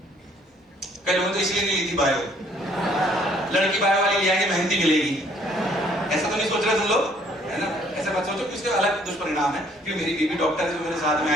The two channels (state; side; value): normal; both; correlation 0.62